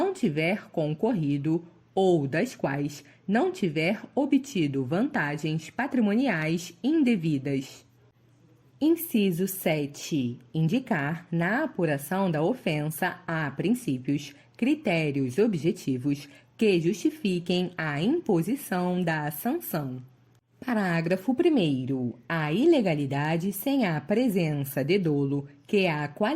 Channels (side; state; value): both; identical; correlation 1.00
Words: tiver concorrido ou das quais não tiver obtido vantagens patrimoniais indevidas. Inciso 7. Indicar, na apuração da ofensa, a princípios, critérios objetivos que justifiquem a imposição da sanção. Parágrafo 1º. A ilegalidade sem a presença de dolo que a